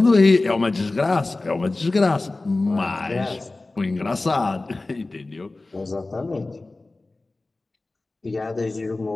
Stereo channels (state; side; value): quieter; right; 3.1 dB